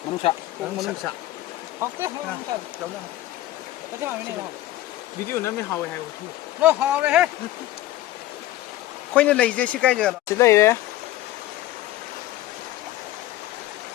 문사. 문사. học cái không sao đâu nữa cái nào này không video nó mới hào hay không nó hào đấy hết khoai nó lấy gì cái gì đó chỉ lấy đấy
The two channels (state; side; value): quieter; right; 15.1 dB